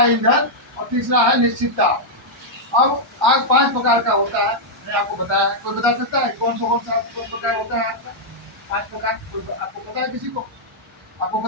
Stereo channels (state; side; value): normal; both; correlation -0.05